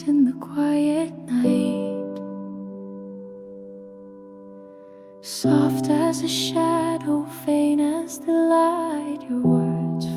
in the quiet night, soft as a shadow, faint as the light. Your words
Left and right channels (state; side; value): identical; both; correlation 1.00